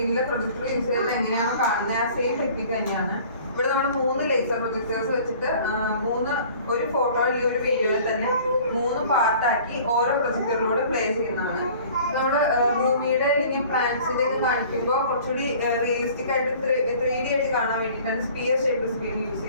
projector use ചെയ്യുന്നത് എങ്ങനെയാണ് കാണുന്നത് ആ സെയിം ടെക്നിക്ക് തന്നെയാണ്. ഇവിടെ നമ്മൾ 3 ലേസർ പ്രൊജക്ടേഴ്സ് വെച്ചിട്ട് ഒരു ഫോട്ടോ അല്ലെങ്കിൽ ഒരു വീഡിയോയിൽ തന്നെ 3 പാർട്ടാക്കി ഓരോ പ്രൊജക്ടറിലൂടെ പ്ലേ ചെയ്യുന്നതാണ്. നമ്മുടെ ഭൂമിയുടെ അല്ലെങ്കിൽ പ്ലാന്റ്സിന്റെ ഒക്കെ കാണിക്കുമ്പോൾ കുറച്ചുകൂടി റിയലിസ്റ്റിക് ആയിട്ട് 3D ആയിട്ട് കാണാൻ വേണ്ടിയിട്ടാണ് സ്പിയർ ഷേപ്പ് സ്ക്രീൻ യൂസ്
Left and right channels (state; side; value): inverted; both; correlation -0.49